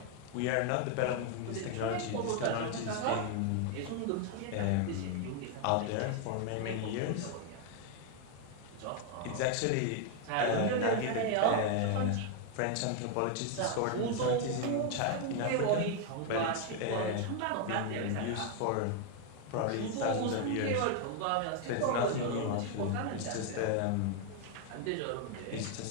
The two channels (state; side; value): different; both; correlation 0.01